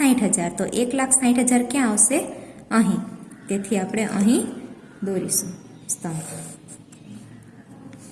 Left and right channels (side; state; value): both; identical; correlation 1.00